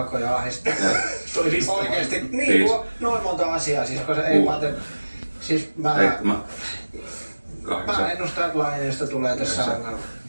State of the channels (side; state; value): both; inverted; correlation -1.00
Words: ahdistaa. Oikeesti, niin noin monta asiaa, siis koska ei Pate... Siis mä ennustan, että Laineesta tulee tässä ongelma.